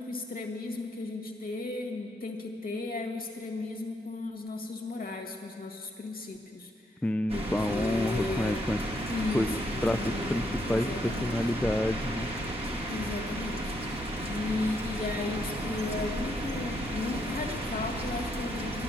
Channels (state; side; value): normal; both; correlation 0.75